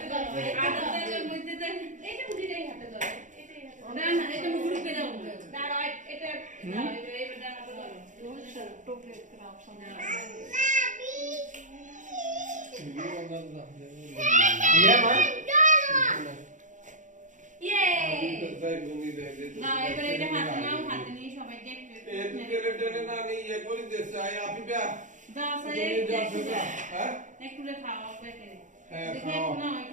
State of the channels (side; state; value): left; late; 0.36 ms